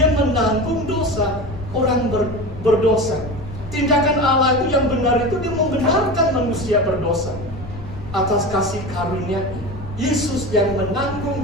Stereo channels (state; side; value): noise; left; rumble, 13 dB below the sound